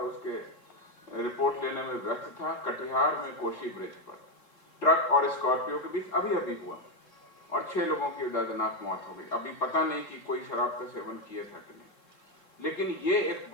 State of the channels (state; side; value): late; right; 3.7 ms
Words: उसके रिपोर्ट लेने में व्यस्त था। कटिहार में कोशी ब्रिज पर ट्रक और स्कॉर्पियो के बीच अभी हुआ और 6 लोगों की दर्दनाक मौत हो गई। अभी पता नहीं कि कोई शराब का सेवन किया था कि नहीं, लेकिन ये एक